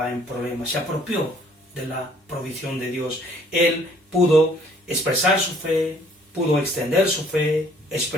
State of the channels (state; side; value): normal; both; correlation 0.60